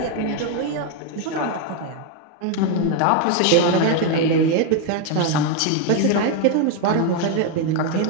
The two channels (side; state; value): both; different; correlation 0.01